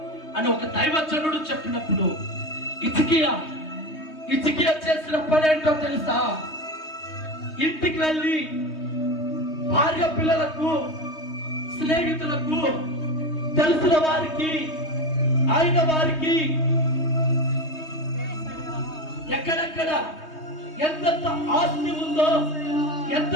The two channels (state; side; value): late; right; 3.2 ms